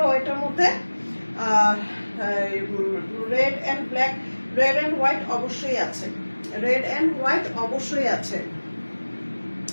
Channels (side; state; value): both; inverted; correlation -1.00